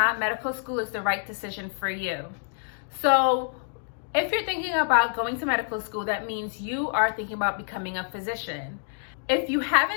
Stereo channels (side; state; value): right; silent; digital silence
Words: medical school is the right decision for you. So, if you're thinking about going to medical school, that means you are thinking about becoming a physician. If you